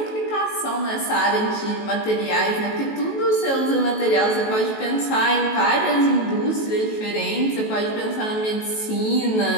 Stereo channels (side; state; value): right; late; 18 ms